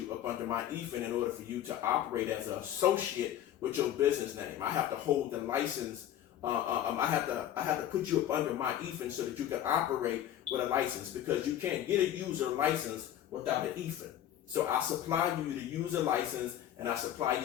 up under my EFIN in order for you to operate as an associate with your business name. I have to hold the license. I have to put you up under my EFIN so that you can operate with a license, because you can't get a user license without an EFIN. So I supply you the user license, and I supply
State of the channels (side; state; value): right; quieter; 11.4 dB